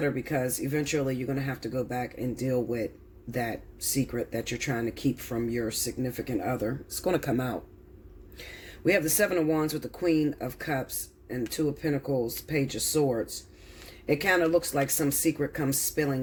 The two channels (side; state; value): both; identical; correlation 1.00